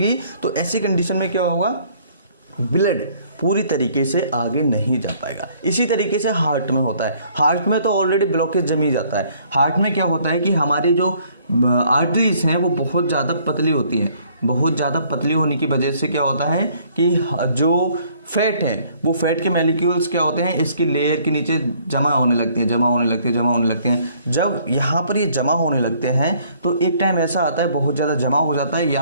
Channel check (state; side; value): inverted; both; correlation -0.61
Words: तो ऐसी कंडीशन में क्या होगा, ब्लड पूरी तरीके से आगे नहीं जा पाएगा। इसी तरीके से हार्ट में होता है। हार्ट में तो ऑलरेडी ब्लॉकेज जमी जाता है। हार्ट में क्या होता है कि हमारी जो आर्टरीज हैं वो बहुत ज़्यादा पतली होती हैं। बहुत ज़्यादा पतली होने की वजह से क्या होता है कि जो फैट है, वो फैट के मॉलिक्यूल्स क्या होते हैं, इसकी लेयर के नीचे जमा होने लगती हैं। जब यहाँ पर ये जमा होने लगते हैं तो एक टाइम ऐसा आता है बहुत ज़्यादा जमा हो जाता है,